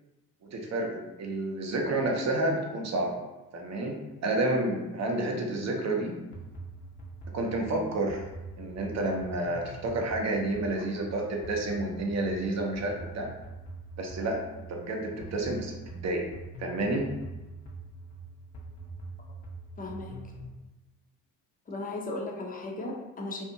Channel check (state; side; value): normal; both; correlation 0.18